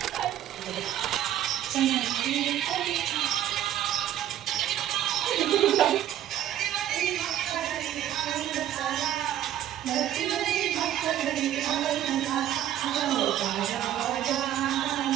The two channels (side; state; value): left; quieter; 11.7 dB